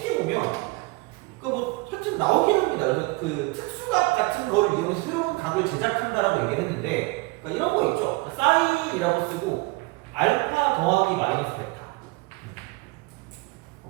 보면 뭐 하여튼 나오긴 합니다. 그래서 그 특수각 같은 거를 이용해서 새로운 각을 제작한다라고 얘기를 했는데 그러니까 이런 거 있죠. 사인이라고 쓰고 알파 더하기 마이너스 베타.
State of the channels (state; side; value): quieter; left; 24.6 dB